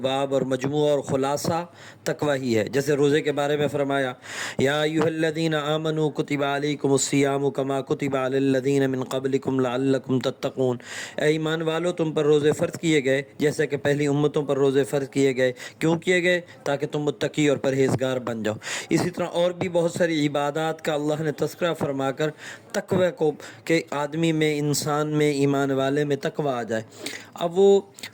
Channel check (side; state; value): both; identical; correlation 1.00